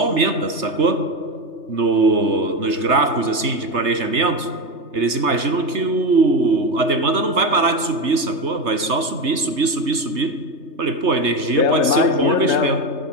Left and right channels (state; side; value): late; left; 3.3 ms